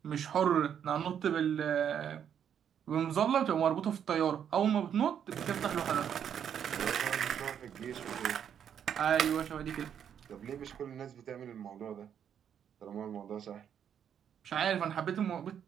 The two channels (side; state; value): left; quieter; 8.7 dB